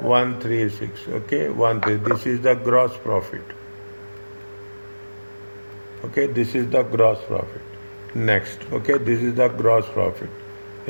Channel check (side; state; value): both; inverted; correlation -1.00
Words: 136. Okay, 13. This is the gross profit. Okay, this is the gross profit. Next, okay, this is the gross profit.